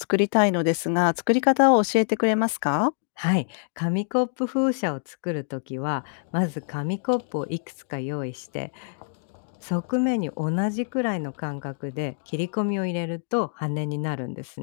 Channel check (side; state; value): right; silent; digital silence